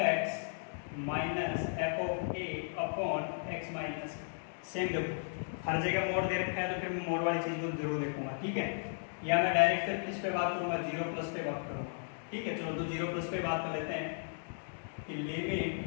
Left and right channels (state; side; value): silent; right; digital silence